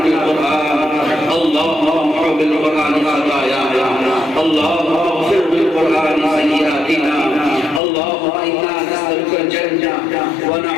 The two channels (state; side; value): drops out; right; at 7.8 s